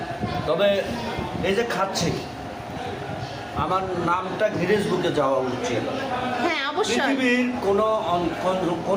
তবে এই যে খাচ্ছি আমার নামটা গিনেস বুকে যাওয়া উচিত। হ্যাঁ অবশ্যই। পৃথিবীর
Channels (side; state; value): both; identical; correlation 1.00